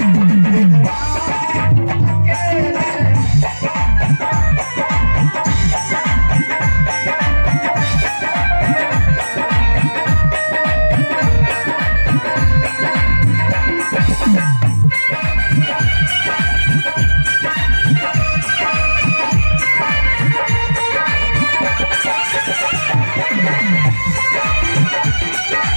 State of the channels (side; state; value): both; inverted; correlation -1.00